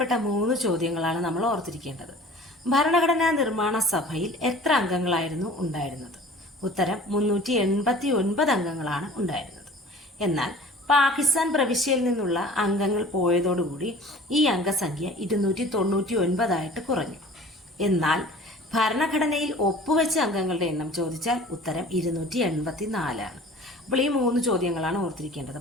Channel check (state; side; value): normal; both; correlation 0.45